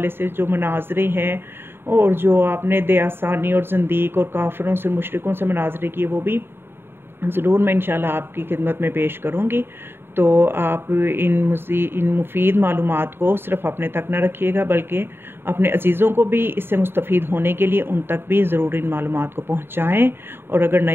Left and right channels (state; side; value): late; left; 0.11 ms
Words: سے جو مناظرے ہیں اور جو آپ نے دیاسانی اور زندیق اور کافروں سے مشرکوں سے مناظرے کیے وہ بھی ضرور میں انشاءاللہ آپ کی خدمت میں پیش کروں گی۔ تو آپ ان مفید معلومات کو صرف اپنے تک نہ رکھیے گا، بلکہ اپنے عزیزوں کو بھی اس سے مستفید ہونے کے لیے ان تک بھی ضرور ان معلومات کو پہنچائیں، اور اگر